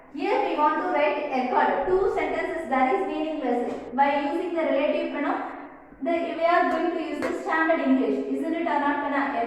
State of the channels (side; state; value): both; identical; correlation 1.00